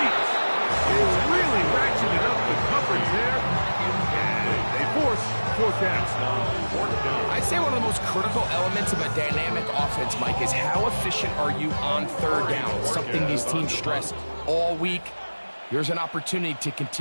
They really ratcheted up the coverage there. And they force 4th down. I'd say one of the most critical elements of a dynamic offense, Mike, is how efficient are you on 3rd down? It's something these teams stress all week. Here's an opportunity to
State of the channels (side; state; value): both; inverted; correlation -1.00